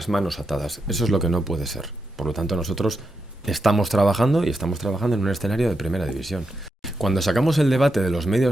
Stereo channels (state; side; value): normal; both; correlation 0.85